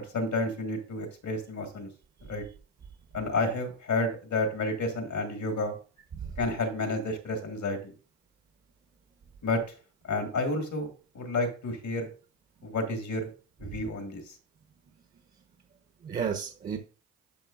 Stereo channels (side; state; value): both; normal; correlation -0.02